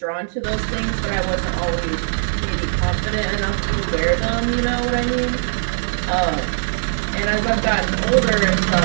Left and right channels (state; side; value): silent; left; digital silence